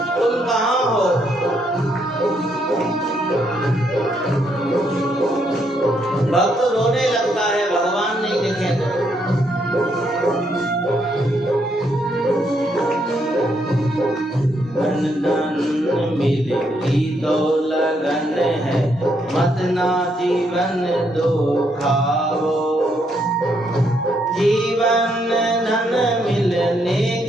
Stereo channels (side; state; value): both; normal; correlation 0.75